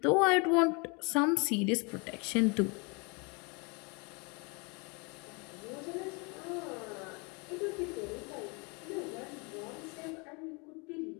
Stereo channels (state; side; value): quieter; right; 31.2 dB